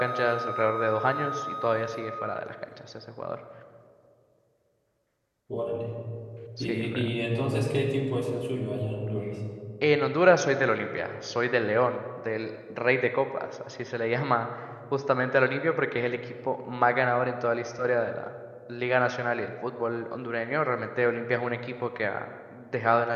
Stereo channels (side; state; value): both; identical; correlation 1.00